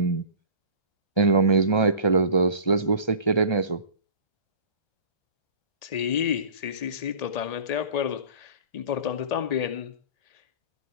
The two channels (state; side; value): late; right; 1.8 ms